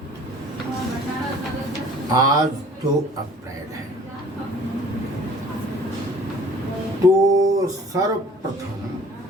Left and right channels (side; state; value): both; normal; correlation 0.50